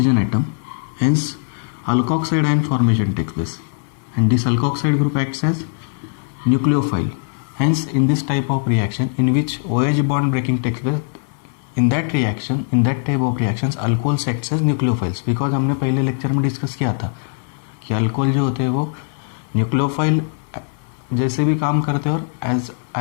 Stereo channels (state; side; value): silent; right; 60 dB below the other